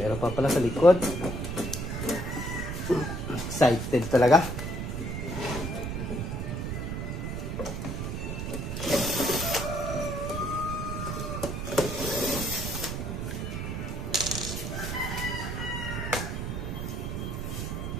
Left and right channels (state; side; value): noise; right; rumble, 3 dB below the sound